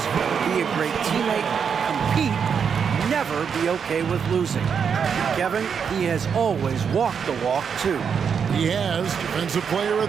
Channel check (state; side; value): quieter; left; 6.8 dB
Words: be a great teammate, compete, never be okay with losing. Kevin, he has always walked the walk, too. He has. Defensive Player of